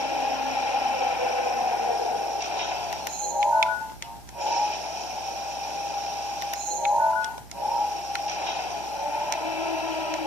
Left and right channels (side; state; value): right; noise; hum, 20 dB below the sound